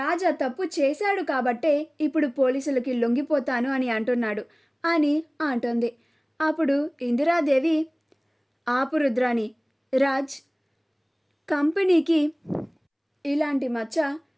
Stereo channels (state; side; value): identical; both; correlation 1.00